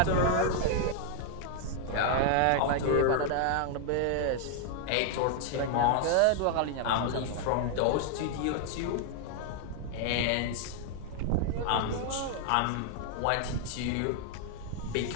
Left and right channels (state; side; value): different; both; correlation 0.00